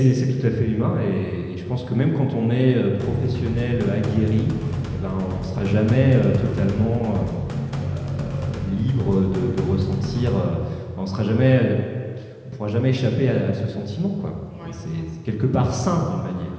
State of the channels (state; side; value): identical; both; correlation 1.00